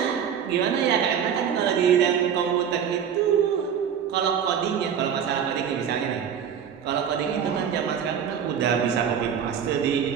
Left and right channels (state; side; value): quieter; left; 8.1 dB